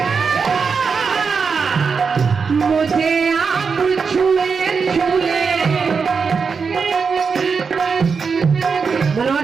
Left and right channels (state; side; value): quieter; left; 5.5 dB